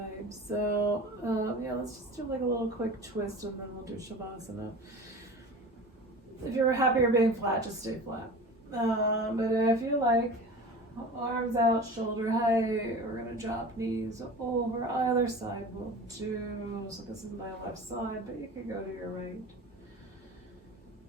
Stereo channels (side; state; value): both; normal; correlation 0.36